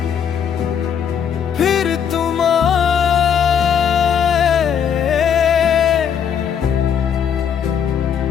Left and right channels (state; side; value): quieter; right; 7.9 dB